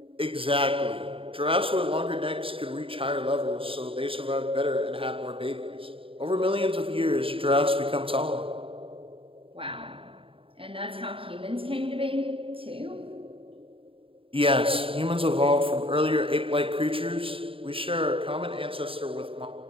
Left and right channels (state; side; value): late; left; 0.26 ms